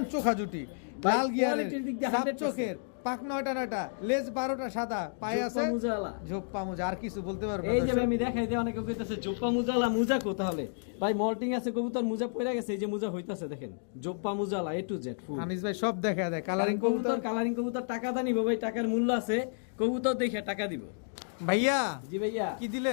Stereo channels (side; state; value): right; silent; digital silence